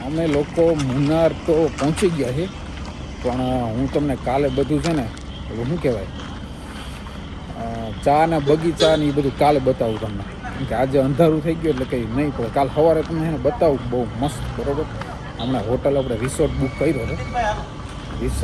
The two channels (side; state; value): both; identical; correlation 1.00